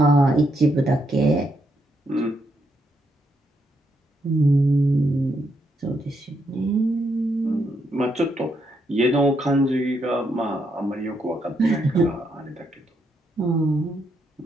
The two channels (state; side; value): normal; both; correlation 0.78